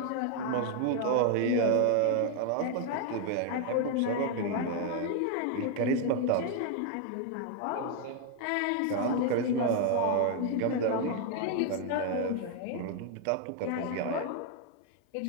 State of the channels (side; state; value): both; different; correlation 0.00